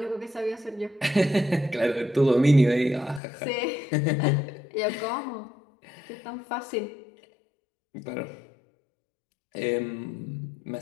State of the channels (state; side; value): drops out; right; at 3.2 s